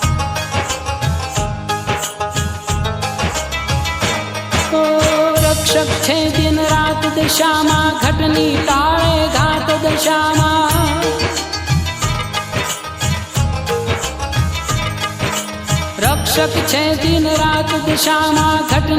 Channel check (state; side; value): identical; both; correlation 1.00